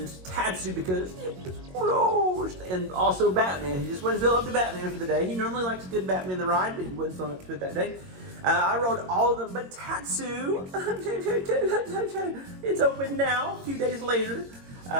Tatsu because it was closed. And also Batman. He just wouldn't feel up to Batman for the day. He normally likes a good Batman the ride, but he wasn't feeling up to it that day. I rode all of them, but Tatsu, it's open now, a few days later.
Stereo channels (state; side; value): late; left; 22 ms